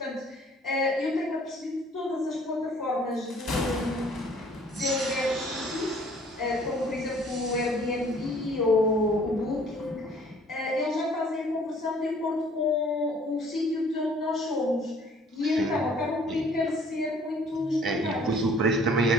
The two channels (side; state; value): both; normal; correlation 0.56